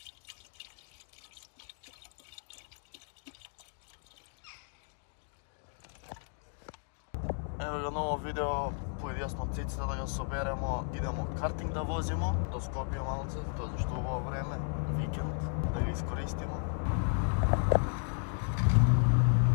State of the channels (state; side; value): silent; right; 55 dB below the other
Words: Ево го ново видео, појдесно циците да го соберемо, идемо картинг да возимо до Скопје малце, тоа зашто убаво време, викенд, да ги искористимо.